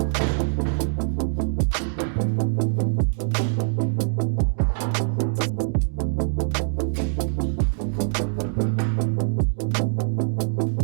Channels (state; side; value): silent; left; 63 dB below the other